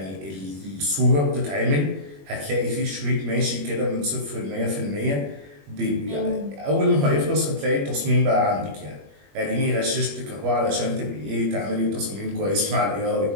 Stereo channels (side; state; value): left; late; 21 ms